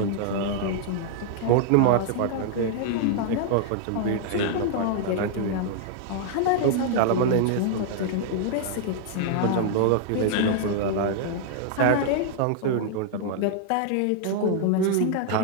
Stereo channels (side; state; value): both; different; correlation -0.01